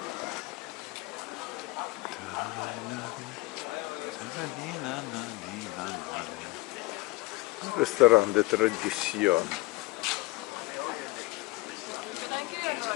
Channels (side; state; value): right; quieter; 20.5 dB